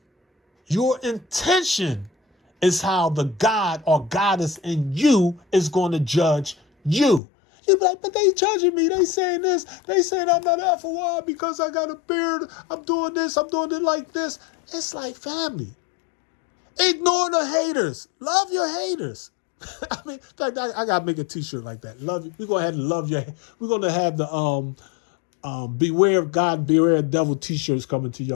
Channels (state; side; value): drops out; right; at 7.2 s